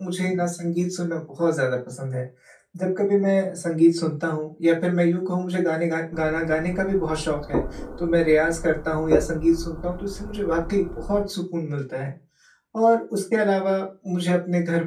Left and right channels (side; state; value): both; identical; correlation 1.00